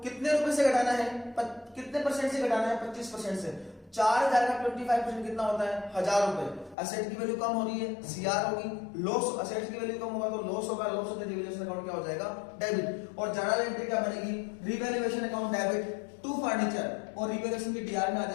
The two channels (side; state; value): right; drops out; at 6.8 s